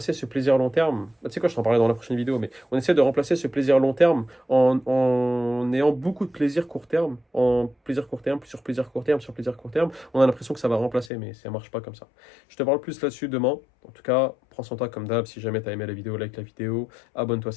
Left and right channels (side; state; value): right; drops out; at 11.1 s